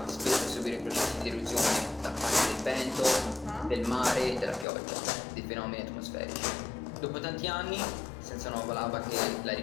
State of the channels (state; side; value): drops out; right; at 4.7 s